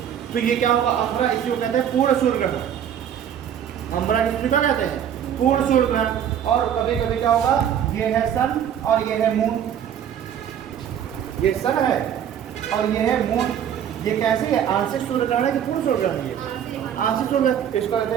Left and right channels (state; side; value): quieter; left; 9.3 dB